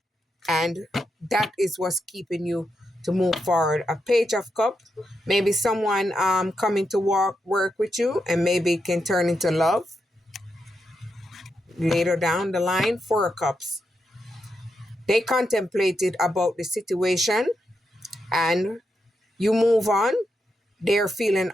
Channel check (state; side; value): normal; both; correlation 0.84